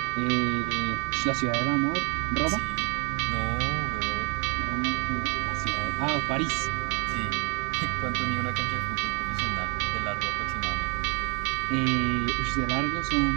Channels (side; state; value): left; quieter; 32.9 dB